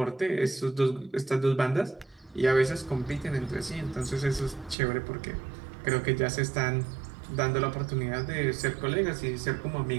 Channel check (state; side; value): drops out; left; at 4.8 s